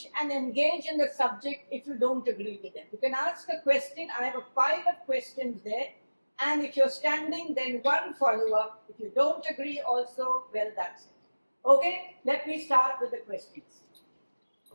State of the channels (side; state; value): both; inverted; correlation -1.00